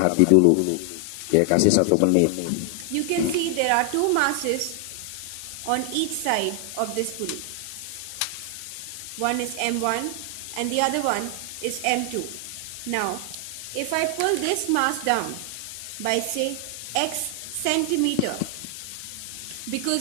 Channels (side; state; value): both; different; correlation 0.00